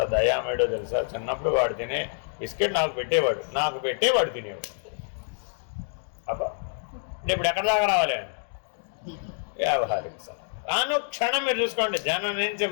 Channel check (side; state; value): right; silent; digital silence